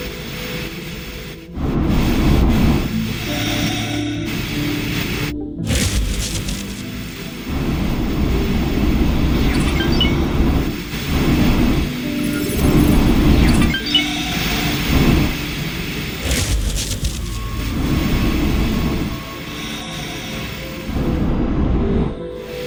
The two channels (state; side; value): identical; both; correlation 1.00